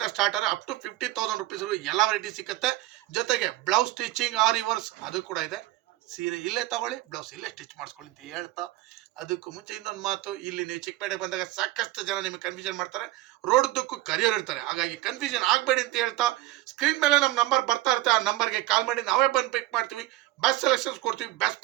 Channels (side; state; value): left; quieter; 16.3 dB